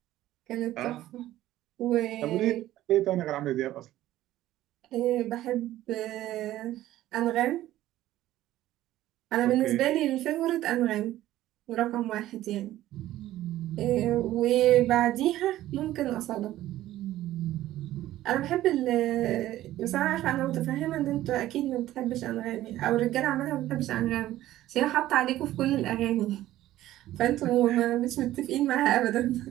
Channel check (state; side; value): quieter; left; 14.4 dB